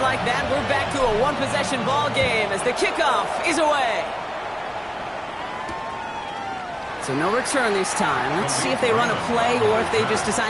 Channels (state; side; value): identical; both; correlation 1.00